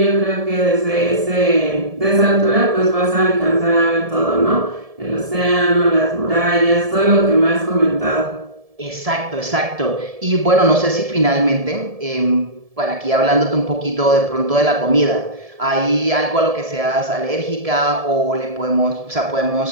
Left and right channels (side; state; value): left; late; 1.7 ms